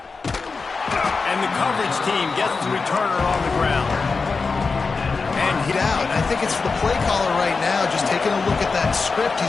And the coverage team gets the returner on the ground. And hit out. I think it's the play caller right now just taking a look at that script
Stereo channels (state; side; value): quieter; right; 4.5 dB